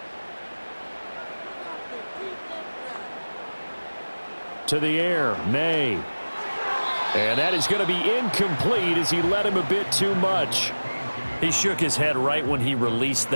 To the air, May. And that is going to be incomplete as he led him a bit too much. He shook his head right when he released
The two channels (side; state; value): both; inverted; correlation -1.00